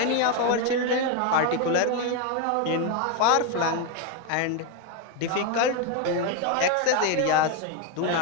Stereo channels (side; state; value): both; different; correlation 0.02